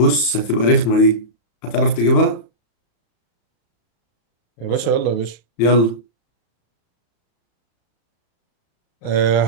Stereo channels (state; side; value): late; right; 34 ms